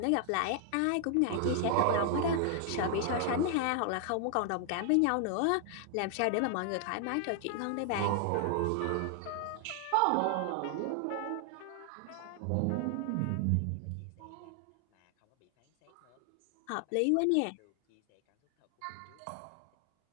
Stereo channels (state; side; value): different; both; correlation 0.00